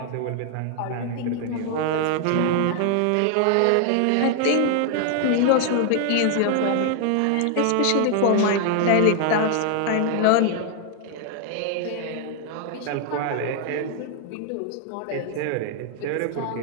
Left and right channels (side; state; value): both; different; correlation 0.00